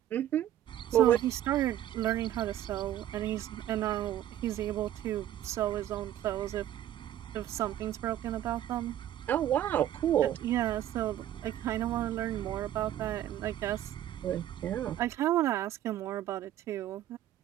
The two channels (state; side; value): quieter; left; 12.2 dB